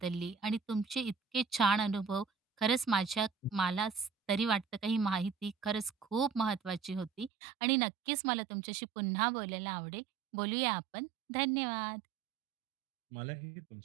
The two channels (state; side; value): drops out; left; at 7.3 s